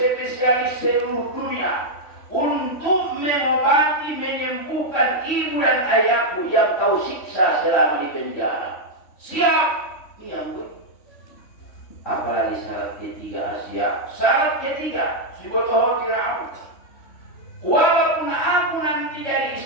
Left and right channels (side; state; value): right; late; 3.1 ms